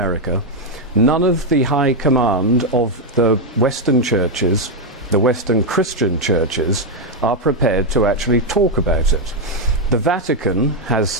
None of the high command of the Western churches, the Western Christian churches, are prepared to actually talk about it. The Vatican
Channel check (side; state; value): both; normal; correlation 0.02